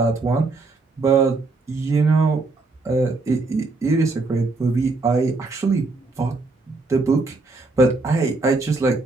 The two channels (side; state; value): left; quieter; 3.6 dB